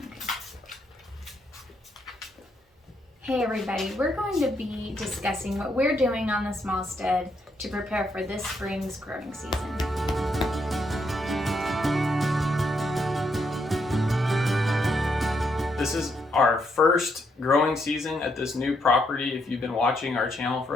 Hey everybody, we're going to be discussing what we're doing on the small stead to prepare for this spring's growing season. This is our first growing season at this new property. If you've been watching our channel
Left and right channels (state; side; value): normal; both; correlation 0.77